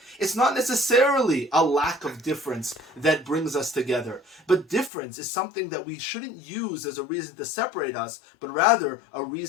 It's not necessarily a lack of difference that brings us together, but difference is something that we shouldn't use as a reason to separate us, but rather a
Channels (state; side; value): drops out; right; at 4.9 s